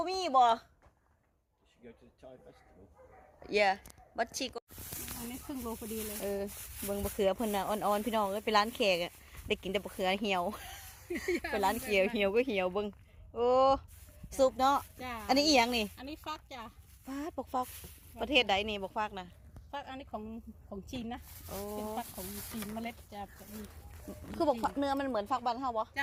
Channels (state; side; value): identical; both; correlation 1.00